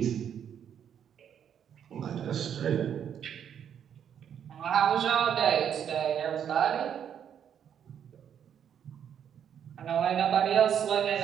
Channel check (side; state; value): left; quieter; 8.7 dB